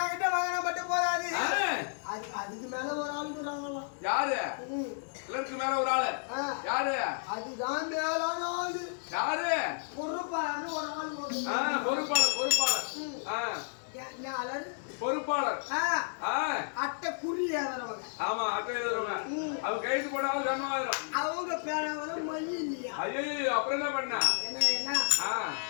வாங்கினா மட்டும் போதாது. அதுக்கு மேல ஒரு ஆளு இருக்கிறாங்களாம். யாரு? கிளர்க்கு மேல ஒரு ஆளு. யாரு? அதுதான் மேலான ஆளு. யாரு? பொறுப்பாளர்னு ஒரு ஆளு. பொறுப்பாளர். பொறுப்பாளர். அட்டை குறி எழுதுறவங்க. ஆமா, அட்டை எழுதுறவங்க. அவங்க கைது போட்டாலும் சம்பளம். அவங்க பேனாவில மை இல்லையா? ஐயோ, அப்புறம் என்ன பண்ண? என்ன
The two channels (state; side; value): silent; right; digital silence